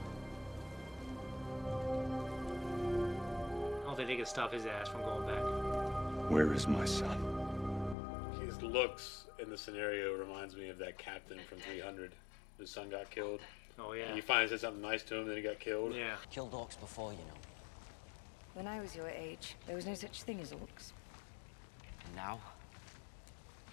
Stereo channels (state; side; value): drops out; right; at 8.0 s